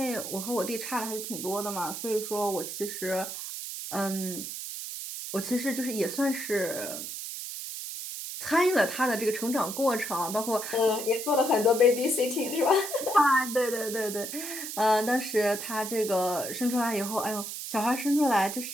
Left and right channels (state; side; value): noise; right; hiss, 7 dB below the sound